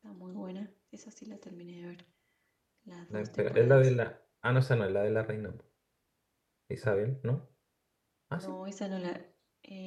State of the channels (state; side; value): identical; both; correlation 1.00